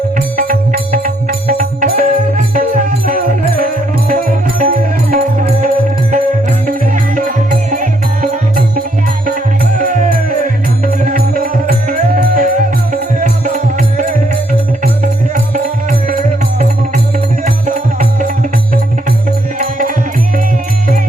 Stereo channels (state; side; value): normal; both; correlation 0.72